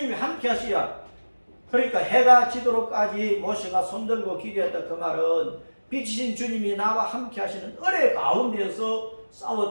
함께 하셔야. 그러니까 해가 지도록까지 모세가 손들고 기도했다. 그 말은 빛이신 주님이 나와 함께 하시는 은혜 가운데서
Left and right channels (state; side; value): inverted; both; correlation -1.00